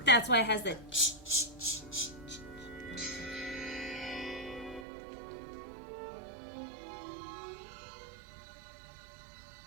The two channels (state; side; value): drops out; left; at 4.9 s